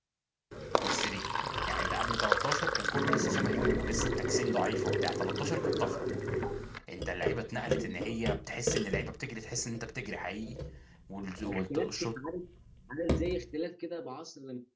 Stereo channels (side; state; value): both; identical; correlation 1.00